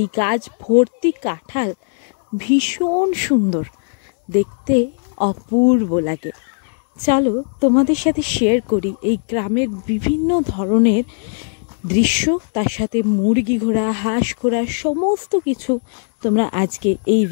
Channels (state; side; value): silent; right; digital silence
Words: গাছ ভর্তি কাঁঠাল ভীষণ সুন্দর দেখতে, অপূর্ব লাগে। চলো তোমাদের সাথে শেয়ার করি এই গ্রামের বিভিন্ন ধরনের দৃশ্য, তার সাথে মুরগি ঘোড়া, হাঁস ঘোড়া সমস্ত কিছু তোমরা আজকে এই